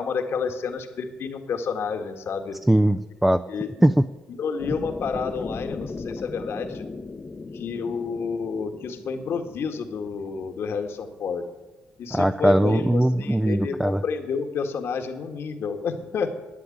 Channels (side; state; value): both; normal; correlation 0.90